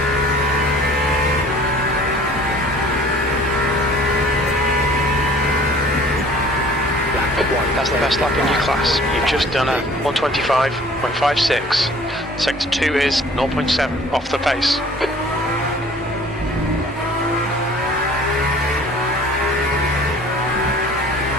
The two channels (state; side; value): normal; both; correlation 0.50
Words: That's the best lap in your class. You've just done a 125.56. Sector 2 is 0.7 off the pace.